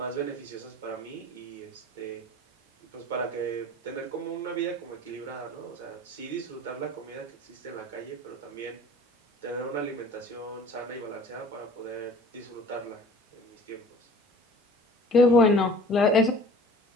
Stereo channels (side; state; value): both; normal; correlation 0.46